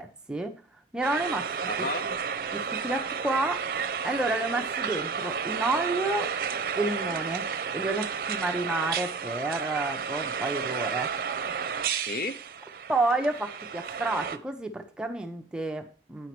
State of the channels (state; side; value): quieter; left; 3.5 dB